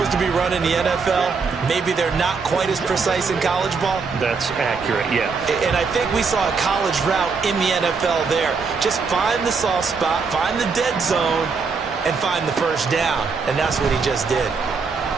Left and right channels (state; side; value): quieter; left; 5.0 dB